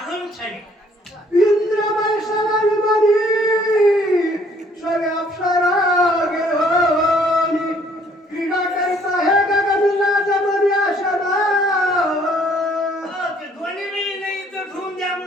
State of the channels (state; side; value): normal; both; correlation 0.61